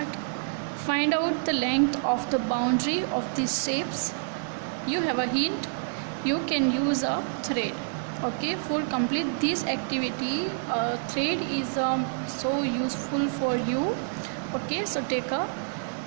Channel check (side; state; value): left; silent; 59 dB below the other